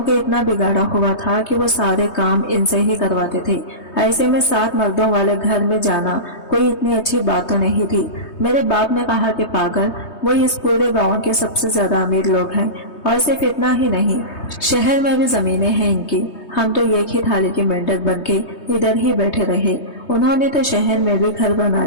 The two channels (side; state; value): right; late; 3.2 ms